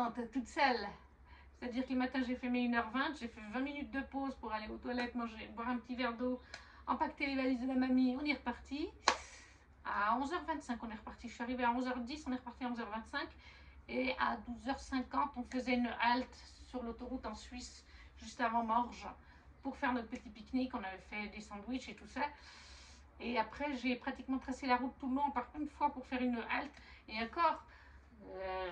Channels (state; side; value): identical; both; correlation 1.00